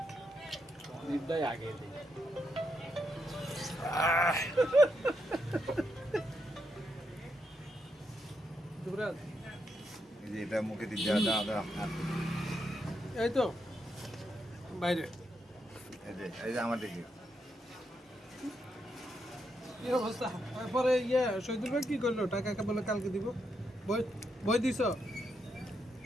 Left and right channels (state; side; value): normal; both; correlation 0.81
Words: দিদাই আগে দিই দুরাজ এই যে এটা মুখে দিয়ে দেওয়া দাও দাও হাত দিয়ে। এই তো বাইরে এই যে আমার দিকে কি অবস্থা পরে শহীদুল ভাই কি করলো টাকা বলে কালকে দিব বই বই দিছ